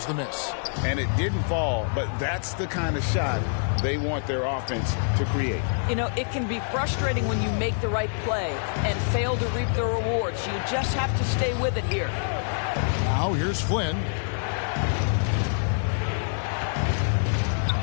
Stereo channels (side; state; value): right; silent; digital silence